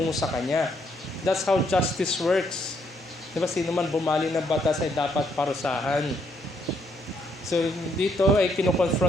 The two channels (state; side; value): normal; both; correlation 0.73